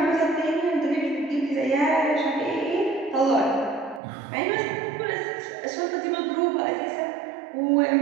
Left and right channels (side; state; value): left; drops out; at 4.0 s